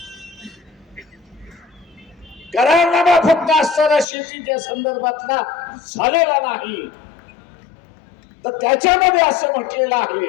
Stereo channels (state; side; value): drops out; right; at 4.0 s